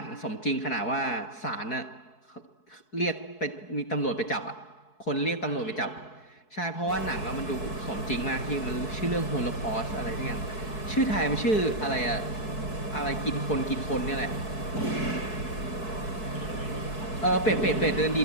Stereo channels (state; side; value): late; right; 4.6 ms